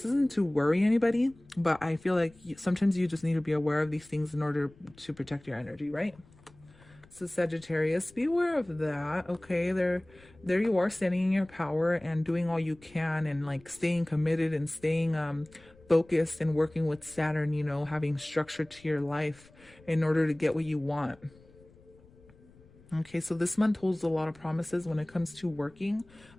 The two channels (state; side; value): noise; left; rumble, 27 dB below the sound